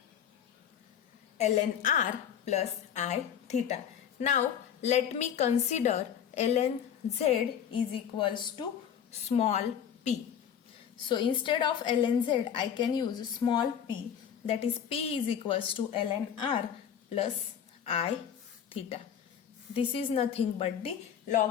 ln r plus I theta. Now let me consider ln z is equals to small p. So instead of ln z, I can use small p, that is p is equals to ln r plus I theta. This is nothing but the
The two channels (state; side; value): quieter; right; 8.6 dB